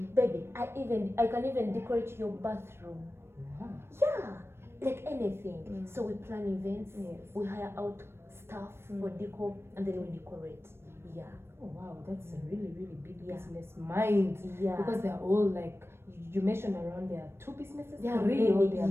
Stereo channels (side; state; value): left; late; 0.12 ms